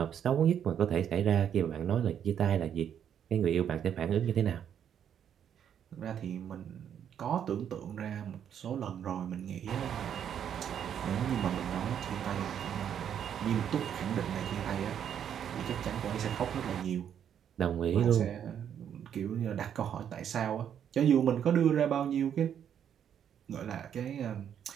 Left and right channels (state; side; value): quieter; left; 9.0 dB